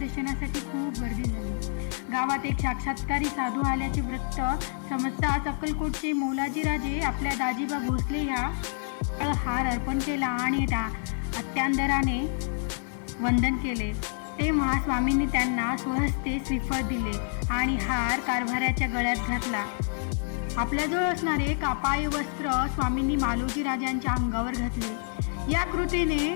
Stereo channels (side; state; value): right; silent; digital silence